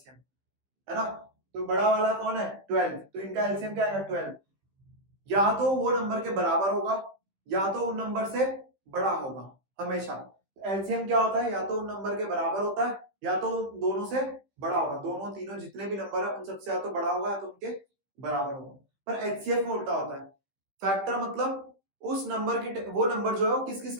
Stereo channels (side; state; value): left; late; 15 ms